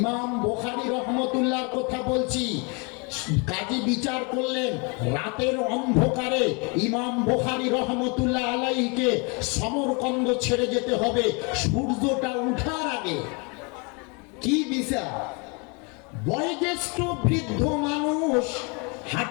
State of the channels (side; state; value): right; quieter; 31.6 dB